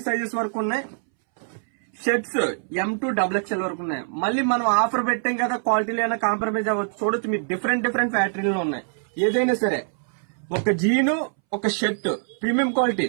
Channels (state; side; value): silent; left; 63 dB below the other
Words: సైజెస్ వరకు ఉన్నాయి. షర్ట్స్ M to XXL వరకు ఉన్నాయి. మళ్ళీ మనం ఆఫర్ పెట్టాం కదా, క్వాలిటీలో అయినా కాంప్రమైజ్ అవ్వచ్చు. చూడొచ్చు, మీరు డిఫరెంట్ ఫ్యాక్టరీలో ఉన్నాయి. ఏదైనా సరే ఒక జీను, ఒక షర్ట్ ప్రీమియం క్వాలిటీ,